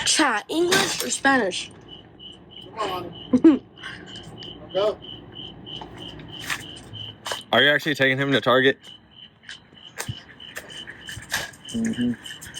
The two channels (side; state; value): both; identical; correlation 1.00